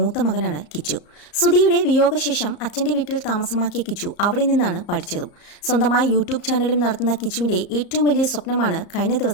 മകനാണ് കിച്ചു. സുധിയുടെ വിയോഗശേഷം അച്ഛൻ്റെ വീട്ടിൽ താമസമാക്കിയ കിച്ചു അവിടെ നിന്നാണ് പഠിച്ചതും. സ്വന്തമായി യൂട്യൂബ് ചാനലും നടത്തുന്ന കിച്ചുവിൻ്റെ ഏറ്റവും വലിയ സ്വപ്നമാണ് കഴിഞ്ഞ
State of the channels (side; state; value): right; late; 34 ms